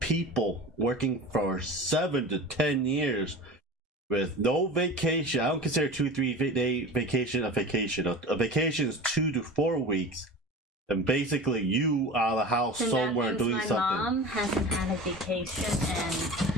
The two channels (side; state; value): both; normal; correlation 0.34